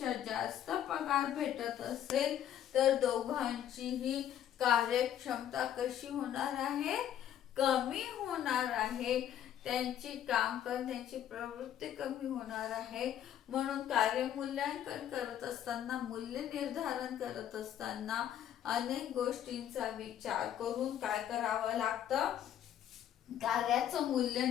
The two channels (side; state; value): right; quieter; 10.6 dB